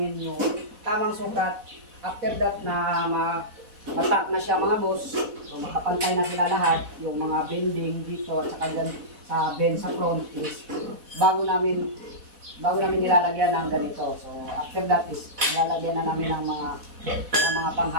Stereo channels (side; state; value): left; late; 4.1 ms